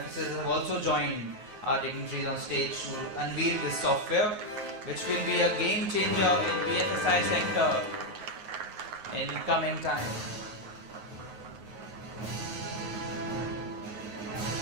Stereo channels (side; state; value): left; late; 9.5 ms